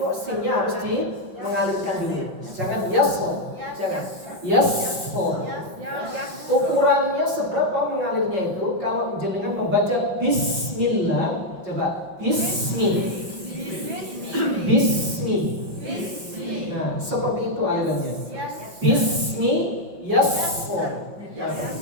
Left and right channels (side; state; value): left; late; 5.5 ms